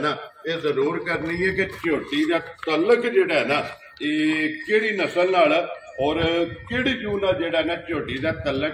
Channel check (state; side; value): identical; both; correlation 1.00